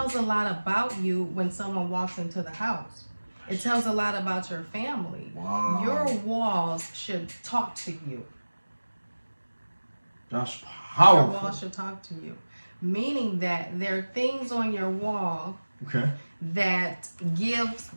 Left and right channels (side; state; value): both; inverted; correlation -1.00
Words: a lot about you when someone walks into the house. It tells a lot about your family. Wow. Your walls should talk to you. That's Your powerful. walls should talk to you. Meaning that there are things on your wall Okay. that gives